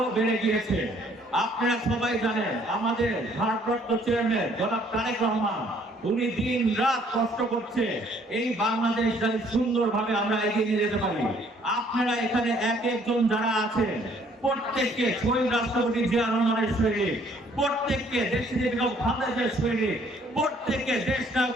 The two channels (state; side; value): normal; both; correlation 0.62